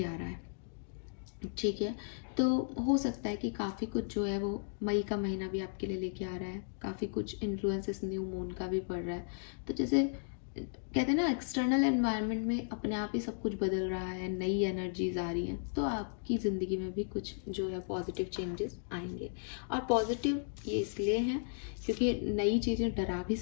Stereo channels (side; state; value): right; silent; digital silence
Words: आ रहा है, ठीक है। तो हो सकता है कि काफ़ी कुछ जो है वो मई का महीना भी आपके लिए लेके आ रहा है। काफ़ी कुछ इन्फ्लुएंसेस न्यू मून का भी पड़ रहा है। तो जैसे कहते हैं ना एक्सटर्नल एनवायरनमेंट में अपने आप ही सब कुछ बदल रहा है, नई एनर्जीज आ रही हैं, तो आपकी ज़िंदगी में भी कुछ जो है पॉजिटिव चेंजेस आएंगे। और पॉजिटिव ये इसलिए हैं क्योंकि नई चीज़ें डरा भी